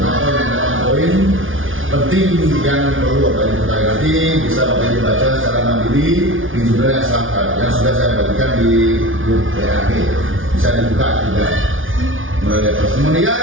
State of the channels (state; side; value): late; left; 0.58 ms